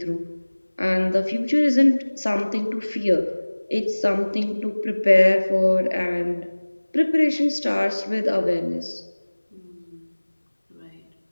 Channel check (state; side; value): inverted; both; correlation -1.00